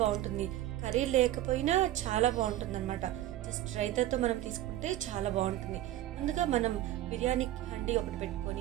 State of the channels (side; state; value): left; quieter; 13.9 dB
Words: బాగుంటుంది. కర్రీ లేకపోయినా చాలా బాగుంటుంది అనమాట. జస్ట్ రైతాతో మనం తీసుకుంటే చాలా బాగుంటుంది. ముందుగా మనం బిర్యానీ హండీ ఒకటి